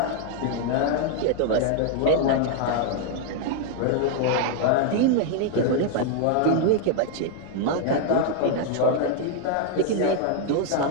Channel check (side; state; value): both; different; correlation 0.00